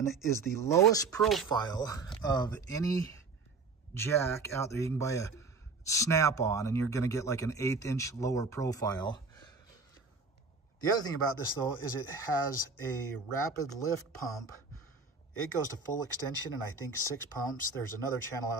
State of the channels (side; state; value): left; quieter; 4.3 dB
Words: is the lowest profile of any jack out there. You can buy a Snap-on, and you're going to get like an 1/8 inch lower profile. The other thing about this, though, is it has a rapid lift pump. It goes to full extension, and I think 6 pumps. There's another channel